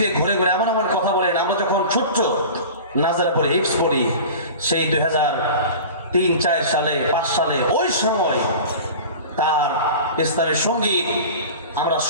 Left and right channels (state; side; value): inverted; both; correlation -0.36